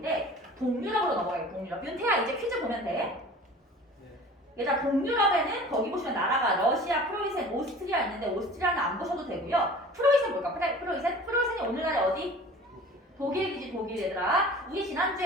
동유럽으로 넘어가요. 동유럽. 윤태야, 이제 퀴즈 보면 돼. 얘들아, 동유럽에는 거기 보시면 나라가 러시아, 프로이센, 오스트리아 있는데 오스트리아는 안 보셔도 되고요. 프로이센 뭘까? 프로이센이 오늘날에 어디? 독일이지, 독일. 얘들아, 우리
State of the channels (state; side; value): normal; both; correlation 0.43